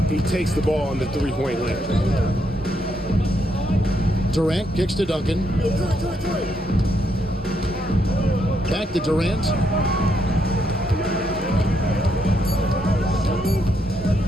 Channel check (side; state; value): both; normal; correlation 0.76